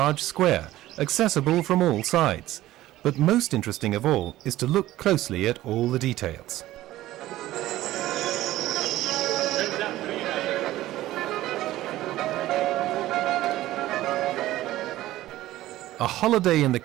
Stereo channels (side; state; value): left; quieter; 15.5 dB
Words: square, accessible from all sides, but most interesting of all is to look closely at all the details. A holiday in the